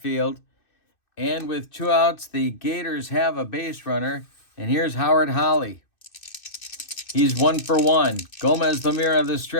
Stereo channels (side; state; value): right; late; 2.6 ms